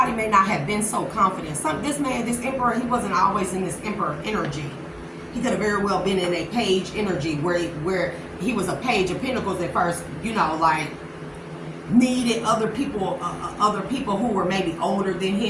may not have been so confident. This emperor, he wasn't always in this emperor energy. He could have very well been in a page energy where he was a page of pentacles at first, like needed other people who were maybe older than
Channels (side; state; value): both; identical; correlation 1.00